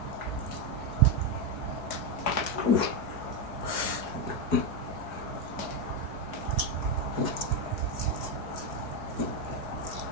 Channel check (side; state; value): right; late; 4.6 ms